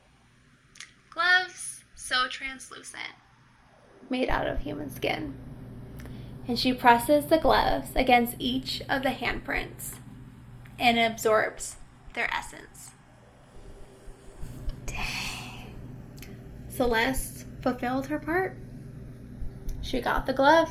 Gloves so translucent, made out of human skin. And she presses the gloves against each of the handprints and it absorbs their essence. Dang. Celeste fulfilled her part. She got the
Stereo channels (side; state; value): both; identical; correlation 1.00